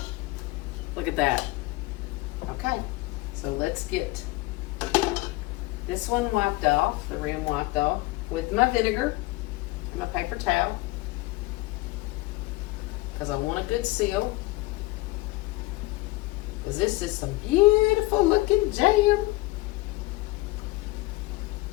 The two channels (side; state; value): right; quieter; 21.0 dB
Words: Look at that. Okay, so let's get this one wiped off, the rim wiped off, with my vinegar and my paper towel, because I want a good seal. Because this is some beautiful looking jam.